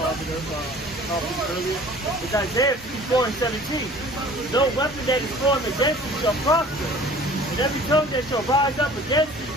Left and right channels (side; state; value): both; normal; correlation 0.48